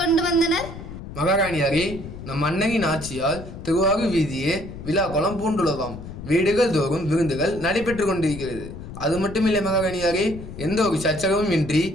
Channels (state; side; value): noise; left; rumble, 12 dB below the sound